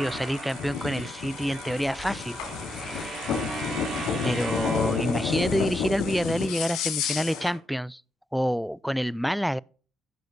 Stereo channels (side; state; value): both; normal; correlation 0.83